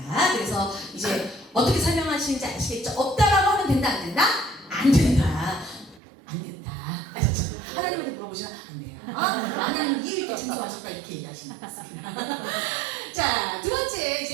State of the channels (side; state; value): left; drops out; at 6.0 s